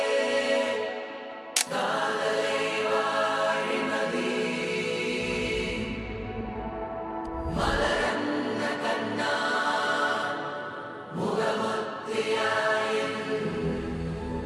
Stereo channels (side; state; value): both; identical; correlation 1.00